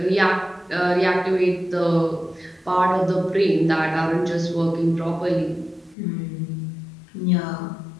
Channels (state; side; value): drops out; right; at 6.0 s